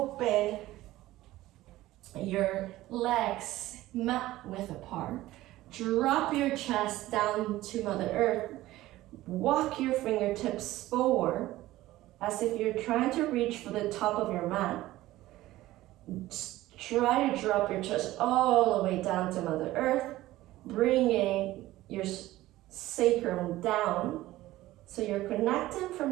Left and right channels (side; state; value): left; quieter; 16.4 dB